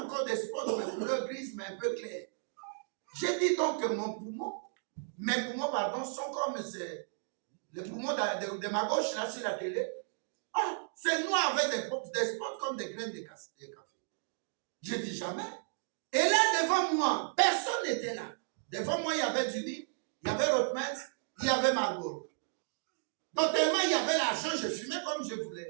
encore des spots de couleur grise, mais un peu clair. J'ai dit donc que mes poumons, pardon, sont comme les poumons de ma gauche, là, sur la télé. Ah, c'est noir avec des spots comme des graines de café. Je dis jamais. Et là, devant moi, personne n'était là. Devant moi, il y avait Judy, il y avait Rothmans, il y avait Marlboro. Donc, tellement il y avait l'argent, je fumais comme je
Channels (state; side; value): silent; left; digital silence